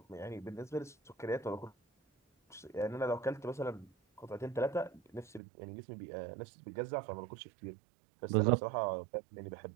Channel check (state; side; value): drops out; left; at 5.4 s